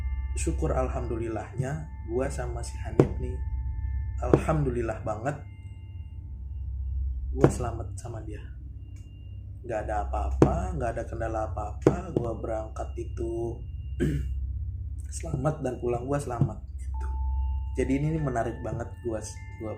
syukur alhamdulillahnya gua sama si Hanif nih, alhamdulillah banget gua selamat sama dia. Gak ada apa-apa, gak ada kendala apa-apa. Gua berangkat itu selamat dan pulang gua selamat gitu. Jadi ini menarik banget gua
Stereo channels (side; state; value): both; identical; correlation 1.00